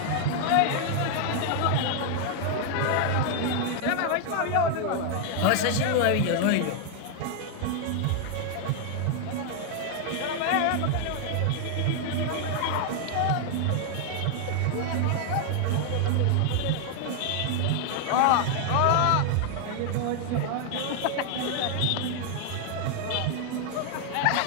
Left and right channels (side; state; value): both; different; correlation 0.00